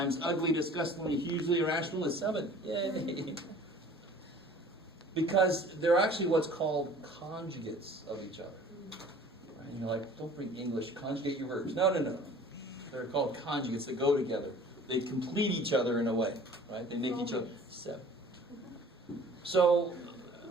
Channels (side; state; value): both; normal; correlation 0.48